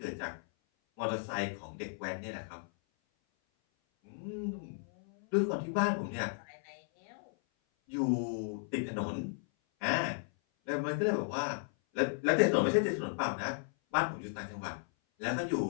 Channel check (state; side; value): silent; right; 55 dB below the other